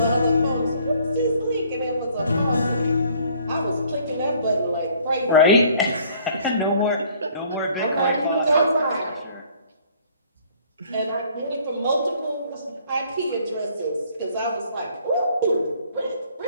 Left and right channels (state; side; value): inverted; both; correlation -0.58